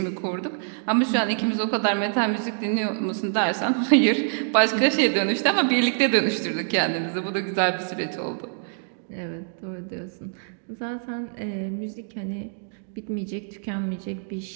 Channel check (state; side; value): silent; left; digital silence